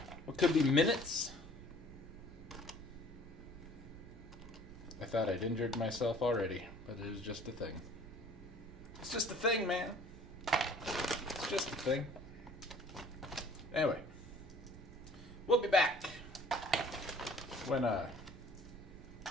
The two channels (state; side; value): noise; right; rumble, 16 dB below the sound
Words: minutes? I thought I'd injured myself already, but it was just a thing. It's just a thing, man. It's just a thing. Anyway, we'll be back when I'm